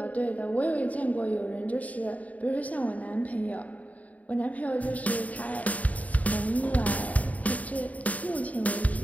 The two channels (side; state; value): right; late; 0.071 ms